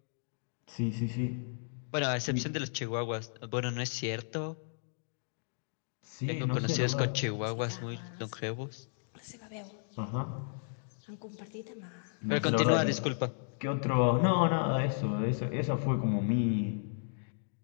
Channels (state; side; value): silent; right; digital silence